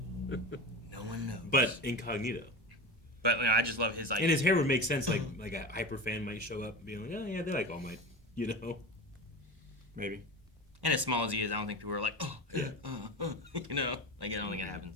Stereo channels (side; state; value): both; normal; correlation 0.26